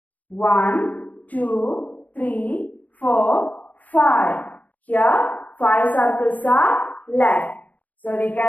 1, 2, 3, 4, 5. Here 5 circles are left. So we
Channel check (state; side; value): late; right; 0.077 ms